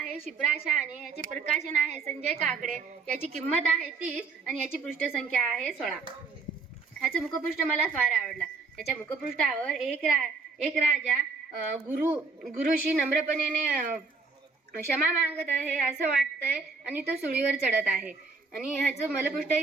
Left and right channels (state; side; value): quieter; left; 4.4 dB